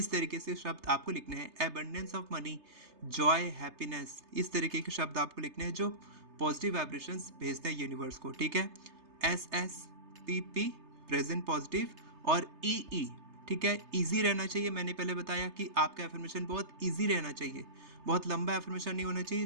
तरीके से शब्द आपको लिखने हैं। Abundance of money, Joy, happiness, इस तरीके के शब्द आपको लिखने हैं जो पॉजिटिव वाइब्रेशंस भेजते हैं यूनिवर्स को, ठीक है। S S P P present positive, और ई ई, ठीक है, इजी रहना चाहिए। मैंने पहले बताया कि आपका एफर्मेशन बहुत इजी रहना चाहिए, बहुत लंबा एफर्मेशन नहीं होना चाहिए,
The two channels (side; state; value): left; late; 3.3 ms